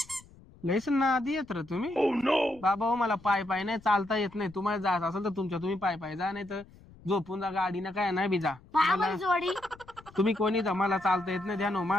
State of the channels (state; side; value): noise; left; rumble, 24 dB below the sound